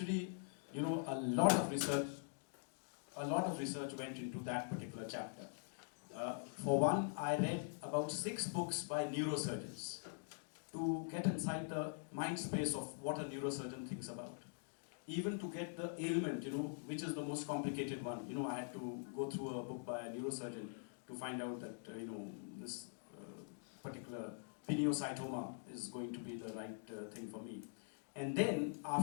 you know, a lot of research went into that particular chapter. For one, I read about 6 books by neurosurgeons to get inside the mind space of what a neurosurgeon thinks about. Even to get the ailment, you know, which is the most complicated one. You know, I had to go through a book by a neurosurgeon to find out that, you know, this particular pineocytoma is going to be the right thing for me. And then,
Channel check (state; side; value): silent; right; digital silence